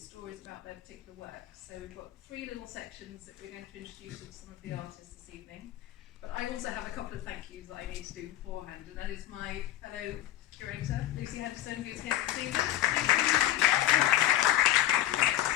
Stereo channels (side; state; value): right; quieter; 13.5 dB